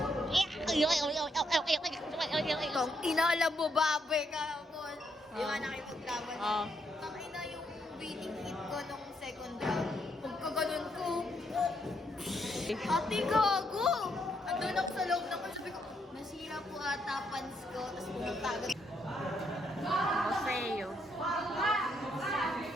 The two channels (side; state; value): both; normal; correlation 0.76